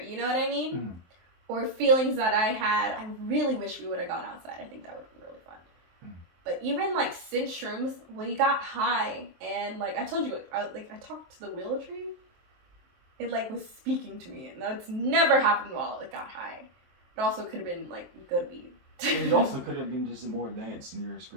You know what I mean? Mm-hmm. Or feelings that I had, I really wish we would have gone outside. I think that would be really fun. Mm-hmm. But even like since shrooms, we got high, and like I told you, I talked to the willow tree. It like was speaking to me, and that's never happened while it got high. It also could have been like good weed. It also could have been just more advanced in your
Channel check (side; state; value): left; late; 23 ms